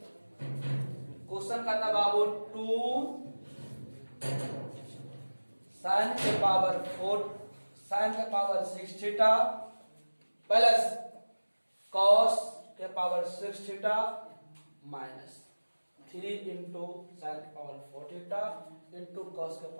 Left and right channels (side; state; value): both; inverted; correlation -1.00